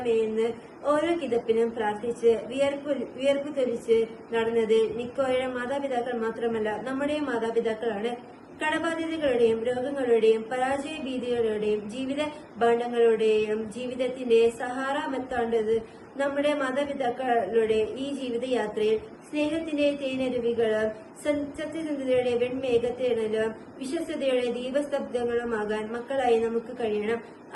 ഓരോ കിതപ്പിനും പ്രാർത്ഥിച്ച് വിയർപ്പ് തൊലിച്ച് നടന്നത് നിക്കോയുടെ മാതാപിതാക്കൾ മാത്രമല്ല, നമ്മുടെയും മാതാപിതാക്കളാണ്. കടബാധ്യതകളുടെയും രോഗങ്ങളുടെയും പരാജയ ഭീതികളുടെയും ജീവിത ഭാണ്ഡങ്ങളുടെയും ജീവിതത്തിന്റെ സഹാറ മെത്താണ്ടത് നമ്മുടെ മാതാപിതാക്കളുടെ ഈ ജീവിതയാത്രയിൽ സ്നേഹത്തിന്റെ തേനരുവികളും സത്യസന്ധതയുടെ വെൺമേഘത്തേണലും വിശ്വസ്തയുടെ ദീപസ്തബ്ധങ്ങളുമാകാൻ മക്കളായി നമുക്ക് കഴിയണം.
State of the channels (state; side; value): identical; both; correlation 1.00